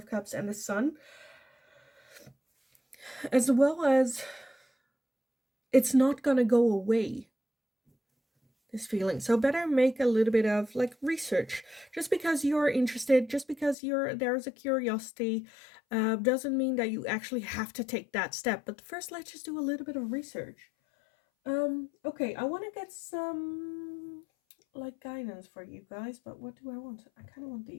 Cups and the Sun, as well as it's not gonna go away, this feeling. So better make a little bit of like research. Just because you're interested, just because there's a curiosity, doesn't mean that you actually have to take that step. But first, let's just do a little bit of research. Okay, I want to get some like guidance for you guys, but what do I want? I kind of want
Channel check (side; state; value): right; drops out; at 13.8 s